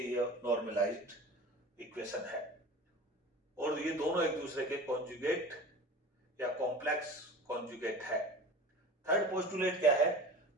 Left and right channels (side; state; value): both; normal; correlation 0.37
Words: ये नॉर्मलाइज्ड इक्वेशन है। और ये दोनों एक दूसरे के कॉन्जुगेट या कॉम्प्लेक्स कॉन्जुगेट है। थर्ड पोस्टुलेट क्या है?